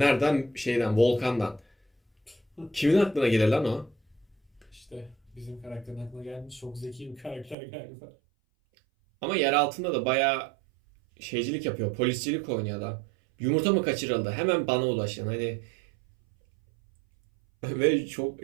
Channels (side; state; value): left; drops out; at 7.6 s